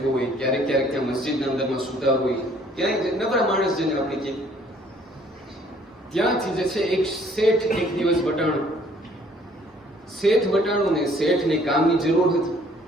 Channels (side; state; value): both; normal; correlation 0.60